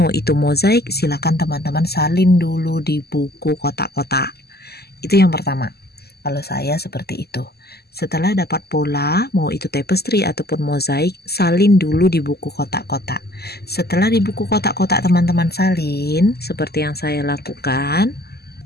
itu mozaik, silakan teman-teman salin dulu di buku kotak-kotak. Itu yang pertama. Kalau saya seperti itu. Setelah dapat pola, mau itu tapestry ataupun mozaik, salin dulu di buku kotak-kotak. Setelah di buku kotak-kotak teman-teman salin, seperti yang saya lakukan.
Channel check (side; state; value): right; late; 0.46 ms